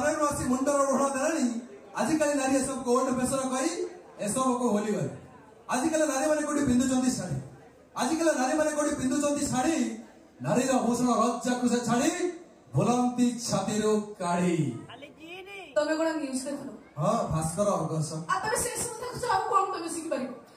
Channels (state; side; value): identical; both; correlation 1.00